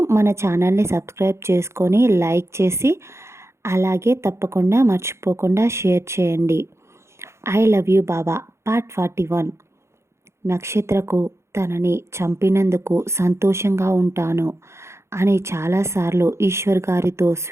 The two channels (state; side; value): late; left; 0.13 ms